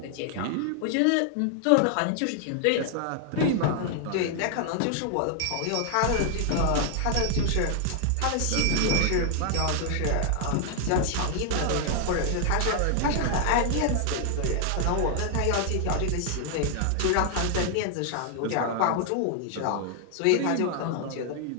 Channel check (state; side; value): different; both; correlation 0.00